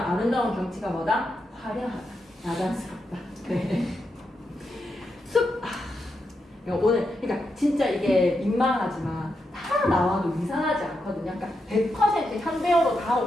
아름다운 경치가 뭐다? 화려하다, 야단스럽다. 네. 숲. 오늘 그러니까 진짜 이게 민망하지만 다 나와도 이상하지 않거든요. 그러니까 100% 현대어로 다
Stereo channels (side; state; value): both; normal; correlation 0.85